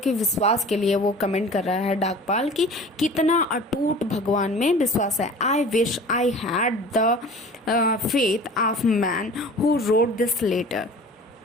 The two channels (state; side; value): normal; both; correlation 0.42